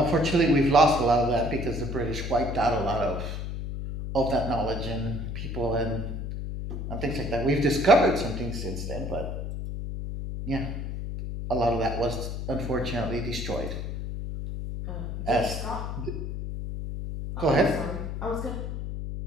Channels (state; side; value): noise; left; hum, 5 dB below the sound